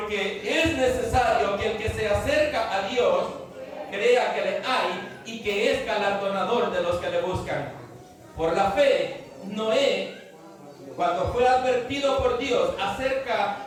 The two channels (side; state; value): both; identical; correlation 1.00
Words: es necesario que el que se acerca a Dios crea que le hay y que es galardonador de los que le buscan. Por la fe, Noé, cuando fue advertido por Dios acerca